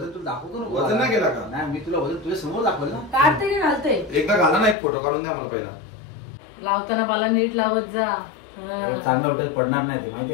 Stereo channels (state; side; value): drops out; right; at 4.8 s